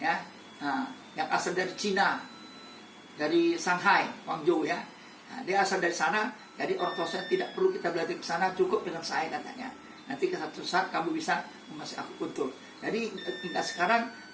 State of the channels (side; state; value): both; identical; correlation 1.00